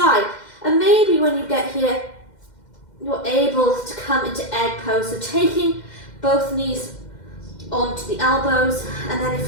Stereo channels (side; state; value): right; late; 2.1 ms